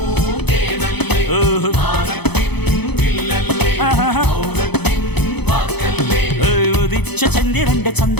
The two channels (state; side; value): late; right; 0.98 ms